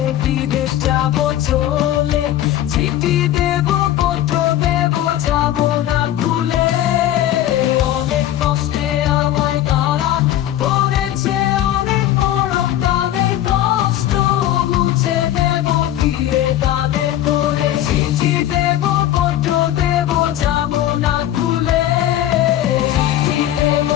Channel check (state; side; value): quieter; right; 12.7 dB